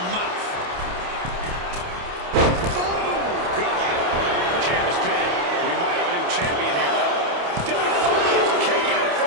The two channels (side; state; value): left; late; 28 ms